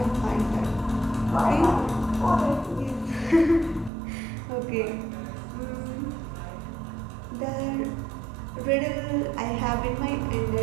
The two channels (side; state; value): left; drops out; at 3.9 s